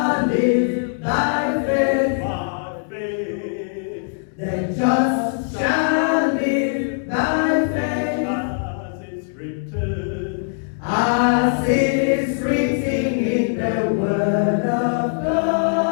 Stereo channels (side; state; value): right; silent; digital silence